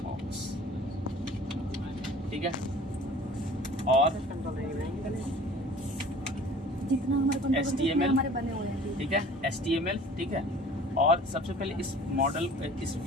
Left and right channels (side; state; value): both; normal; correlation 0.47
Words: बॉक्स, ठीक है। और HTML, ठीक है, HTML, ठीक है। और सबसे पहले इस मॉडल, इस